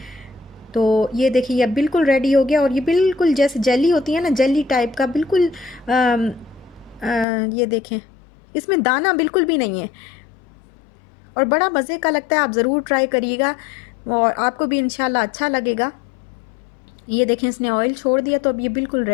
तो ये देखिए, ये बिल्कुल रेडी हो गया और ये बिल्कुल जैसे जेली होती है ना, जेली टाइप का बिल्कुल। ये देखें, इसमें दाना बिल्कुल भी नहीं है और बड़ा मज़े का लगता है। आप ज़रूर ट्राई करिएगा और आपको भी इंशाल्लाह अच्छा लगेगा। ये देखें, इसने ऑयल छोड़ दिया तो अब ये बिल्कुल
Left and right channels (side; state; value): right; drops out; at 7.2 s